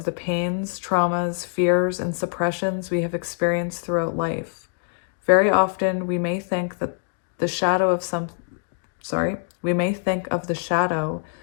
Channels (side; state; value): right; silent; digital silence